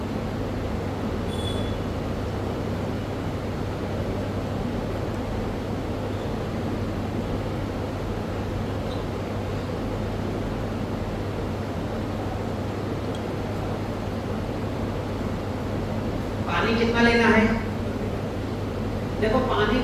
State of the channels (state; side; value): identical; both; correlation 1.00